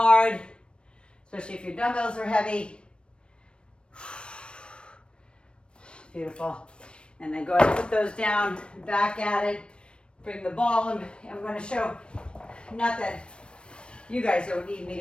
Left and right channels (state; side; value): late; right; 0.056 ms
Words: especially if your dumbbells are heavy. Beautiful. And then go ahead and put those down, back at it. Bring the ball, and I'm going to show, not that you guys don't need me